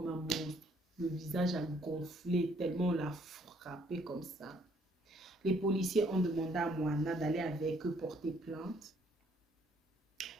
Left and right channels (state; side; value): normal; both; correlation 0.65